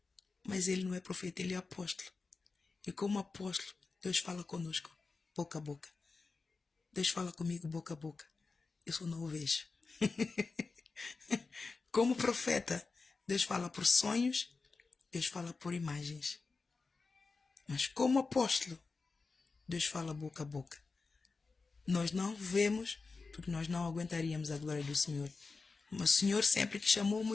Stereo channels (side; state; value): right; quieter; 4.2 dB